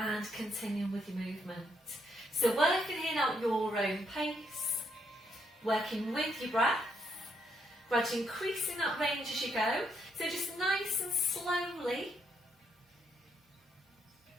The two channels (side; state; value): both; normal; correlation 0.75